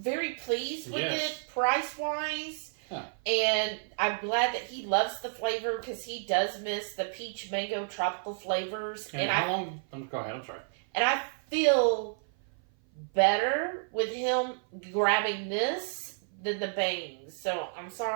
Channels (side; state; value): left; silent; 55 dB below the other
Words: pleased with it price-wise. Huh. And I'm glad that he loves the flavor because he does miss the peach mango tropical flavors. And how long? Go ahead, I'm sorry. And I feel better with him grabbing this than the bangs. So I'm